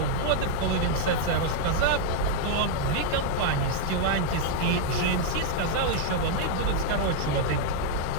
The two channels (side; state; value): both; different; correlation 0.00